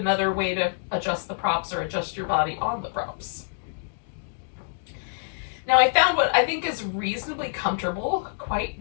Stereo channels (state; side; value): silent; right; digital silence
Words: way to adjust the props or adjust your body on the props. Now I found what I think is reasonably comfortable, quite